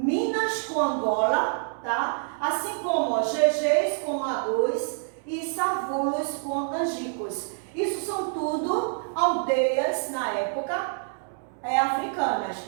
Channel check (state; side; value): silent; left; digital silence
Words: com Angola, tá? Assim como Gegés com Agôs e Savulos com Angicos. Isso são tudo aldeias, na época, africanas,